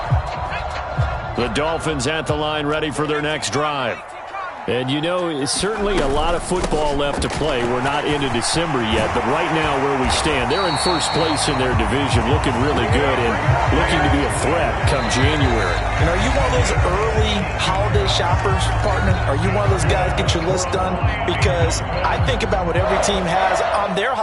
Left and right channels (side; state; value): both; identical; correlation 1.00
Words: The Dolphins at the line, ready for their next drive. And, you know, it's certainly a lot of football left to play. We're not into December yet, but right now where we stand, they're in first place in their division, looking really good and looking to be a threat come January. And are you one of those early holiday shoppers, partner? Are you one of those guys get your list done? Because I think about what every team has on their